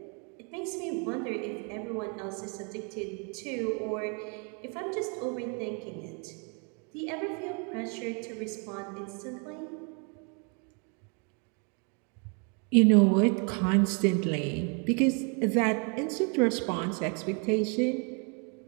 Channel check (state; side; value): quieter; left; 36.5 dB